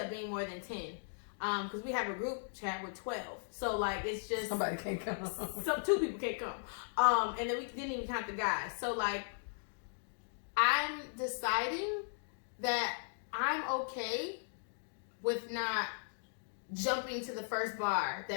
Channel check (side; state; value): right; silent; digital silence